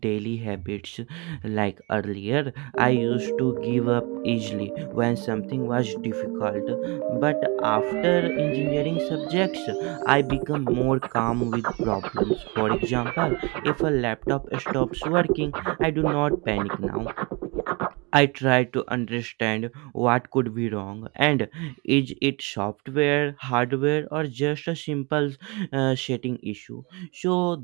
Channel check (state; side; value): quieter; left; 28.7 dB